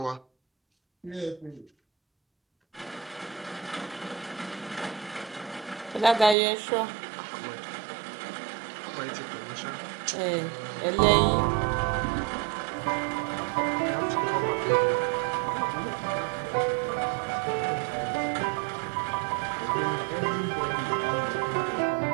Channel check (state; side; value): drops out; left; at 6.4 s